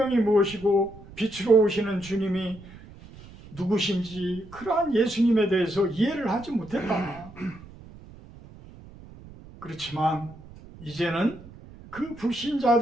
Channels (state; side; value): noise; right; rumble, 19 dB below the sound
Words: 무엇이고 빛으로 오시는 주님이 누구신지 그러한 예수님에 대해서 이해를 하지 못했다. 그렇지만 이제는 그